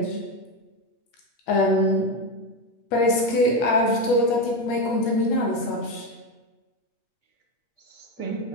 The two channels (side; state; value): right; late; 8.5 ms